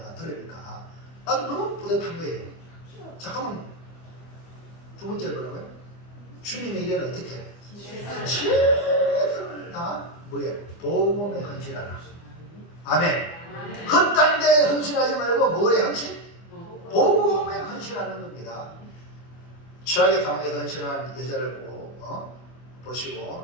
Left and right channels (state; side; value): late; right; 24 ms